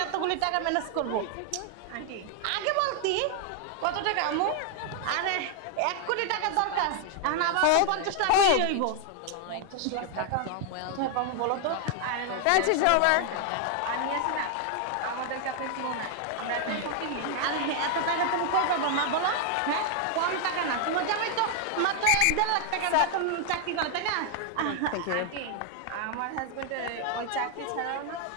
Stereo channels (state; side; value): different; both; correlation 0.00